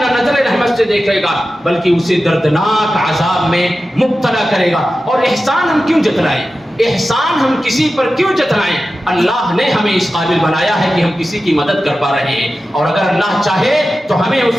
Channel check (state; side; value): normal; both; correlation 0.93